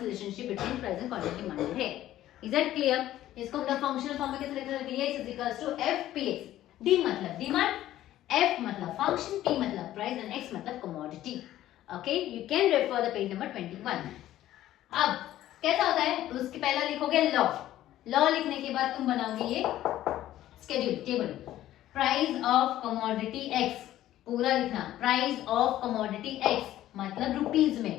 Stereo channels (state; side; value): quieter; right; 13.6 dB